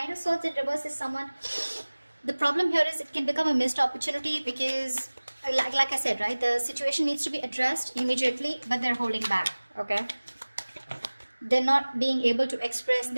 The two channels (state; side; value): inverted; both; correlation -1.00